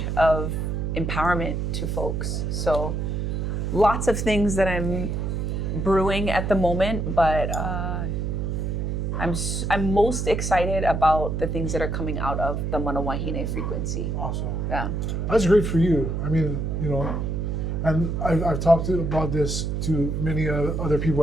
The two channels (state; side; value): noise; right; hum, 1 dB below the sound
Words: of empowerment to folks. So lots of things that I'm brewing at the moment, but I'm most excited about the things that are coming out of the mana wahine frequency. Awesome. Yeah. That's great for you. I mean, you know, and I've talked about this to many other people